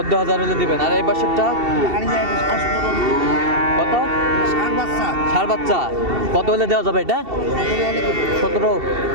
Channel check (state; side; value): late; left; 2.7 ms